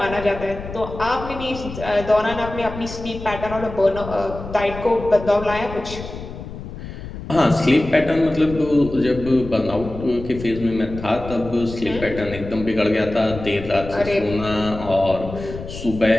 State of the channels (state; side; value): noise; left; rumble, 11 dB below the sound